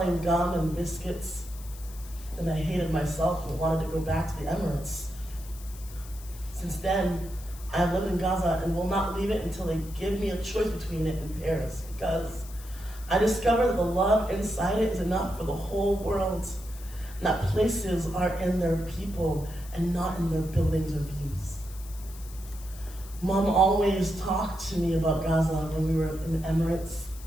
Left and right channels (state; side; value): noise; left; hiss, 18 dB below the sound